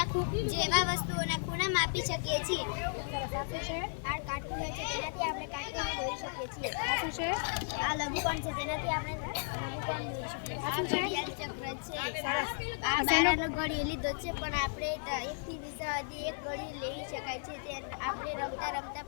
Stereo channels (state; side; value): silent; right; digital silence